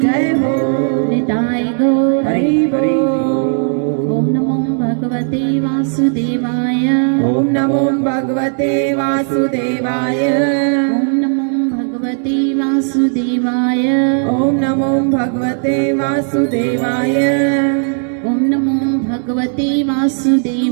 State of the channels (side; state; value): left; silent; 67 dB below the other